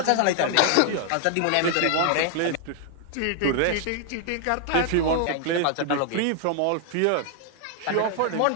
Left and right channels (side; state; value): both; different; correlation 0.00